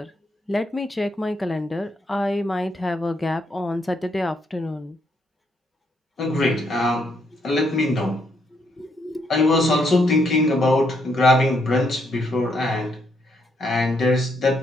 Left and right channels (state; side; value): normal; both; correlation 0.75